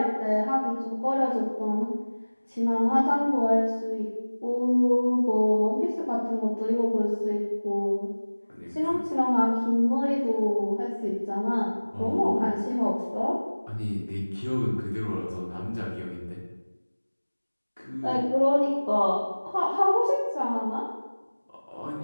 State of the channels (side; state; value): both; inverted; correlation -1.00